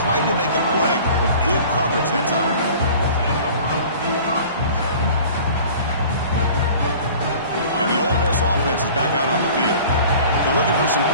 to make a play with good coverage that time. And the Ole Miss offense is back out on the field. They're looking for some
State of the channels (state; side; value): inverted; both; correlation -0.45